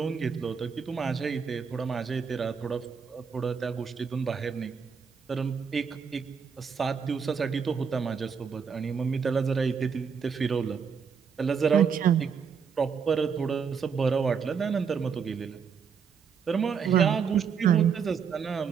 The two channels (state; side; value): quieter; left; 6.4 dB